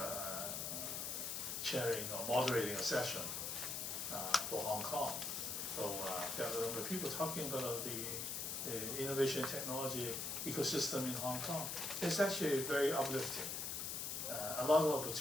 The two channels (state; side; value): noise; left; hiss, 3 dB below the sound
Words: chairing or moderating a session for Hong Kong. So there were people talking about the innovation technology ecosystem in Hong Kong. It's actually very uplifting. A lot of